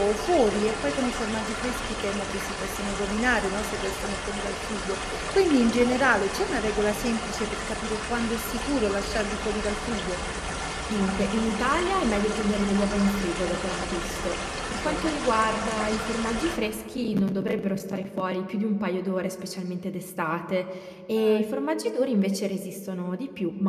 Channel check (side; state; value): both; identical; correlation 1.00